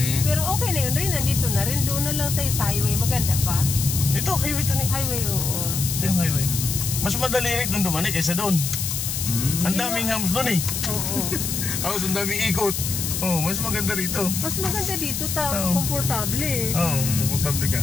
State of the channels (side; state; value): left; noise; hiss, 3 dB below the sound